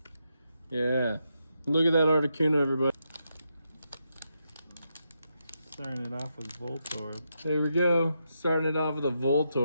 Yeah. Look at that Articuno, everybody. Starting it off with Voltorb. There we go. Starting it off with a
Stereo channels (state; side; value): inverted; both; correlation -0.83